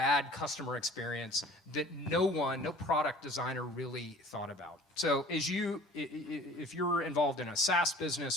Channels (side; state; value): both; normal; correlation 0.48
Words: customer experience that no product designer really thought about. So if you're involved in a SaaS